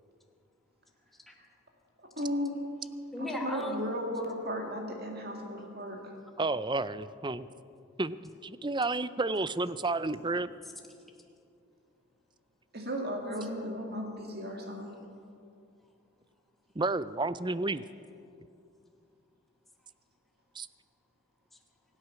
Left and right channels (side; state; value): both; normal; correlation 0.33